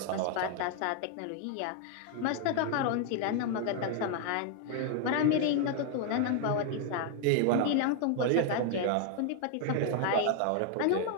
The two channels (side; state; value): both; different; correlation 0.00